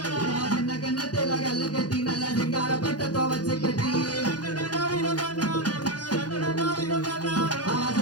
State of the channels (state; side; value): late; right; 0.69 ms